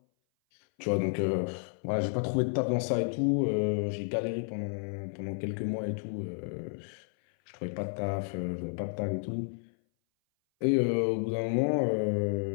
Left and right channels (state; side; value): silent; right; 57 dB below the other